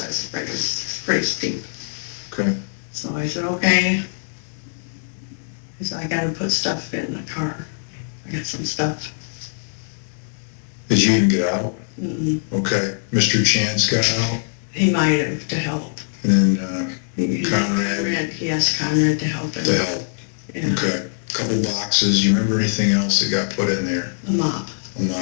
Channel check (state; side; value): silent; right; digital silence